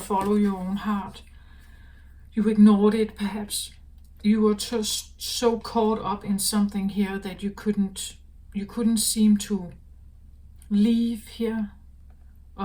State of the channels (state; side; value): identical; both; correlation 1.00